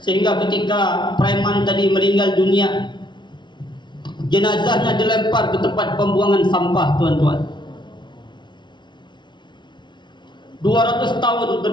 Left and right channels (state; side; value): late; right; 0.23 ms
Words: Sehingga ketika preman tadi meninggal dunia, jenazahnya dilempar ke tempat pembuangan sampah, tuan-tuan. 200 tahun